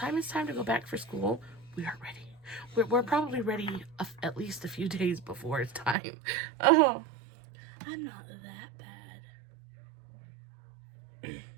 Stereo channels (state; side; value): drops out; left; at 6.0 s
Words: it's time to go back for school, we are ready. We're probably ready at least a few days before it's time. Oh, I'm not that bad.